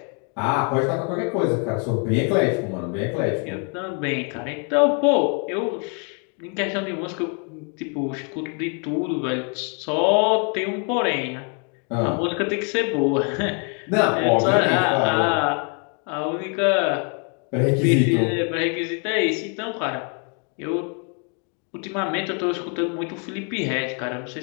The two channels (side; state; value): right; quieter; 38.7 dB